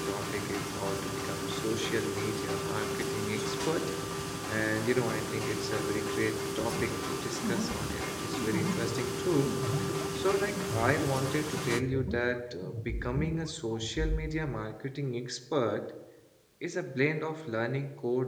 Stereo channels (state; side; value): identical; both; correlation 1.00